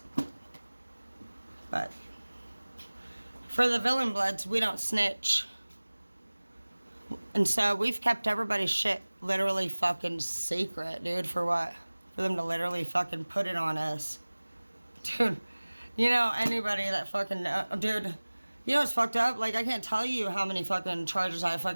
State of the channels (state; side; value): inverted; both; correlation -1.00